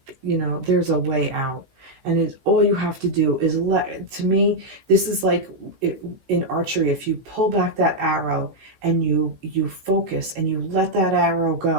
you know, there's a way out. And all you have to do is to me, this is like in archery, if you pull back that arrow and you focus and you let that arrow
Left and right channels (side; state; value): left; late; 16 ms